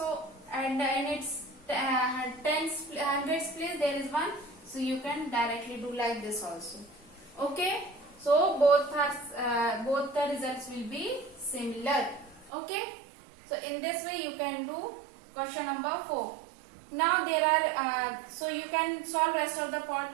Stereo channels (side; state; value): left; drops out; at 12.5 s